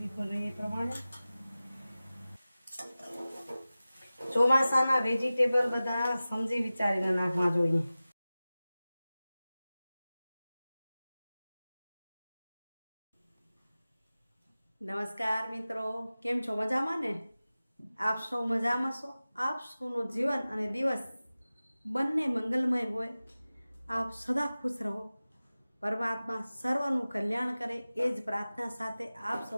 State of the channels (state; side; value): inverted; both; correlation -0.96